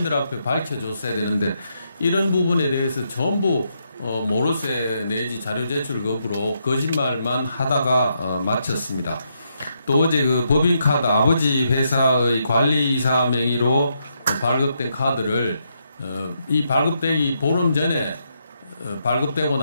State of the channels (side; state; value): both; inverted; correlation -0.79